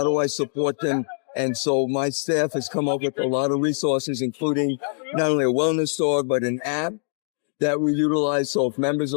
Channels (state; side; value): silent; right; digital silence